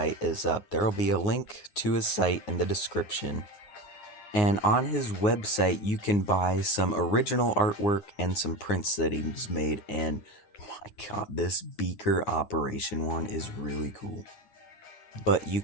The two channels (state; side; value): late; right; 9.5 ms